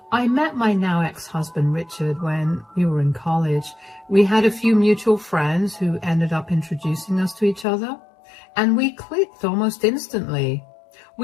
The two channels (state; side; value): drops out; right; at 7.7 s